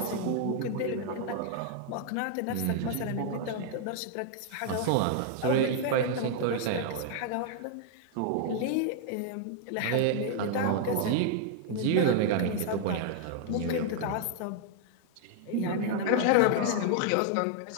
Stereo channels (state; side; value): different; both; correlation 0.00